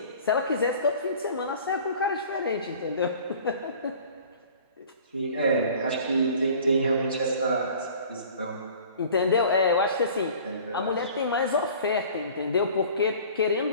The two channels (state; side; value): inverted; both; correlation -0.47